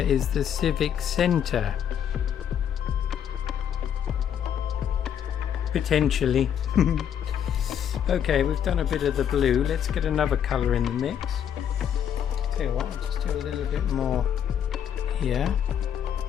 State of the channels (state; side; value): quieter; right; 9.0 dB